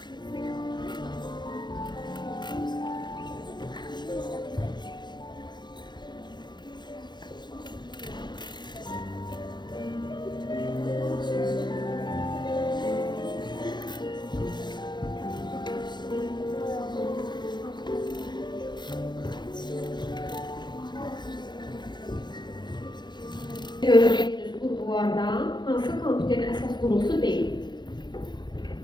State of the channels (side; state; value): right; late; 0.21 ms